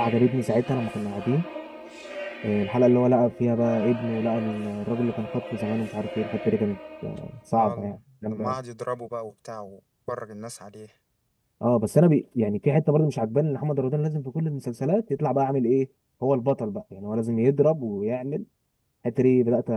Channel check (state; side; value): identical; both; correlation 1.00